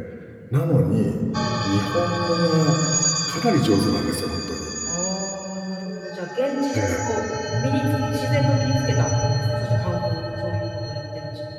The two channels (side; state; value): both; identical; correlation 1.00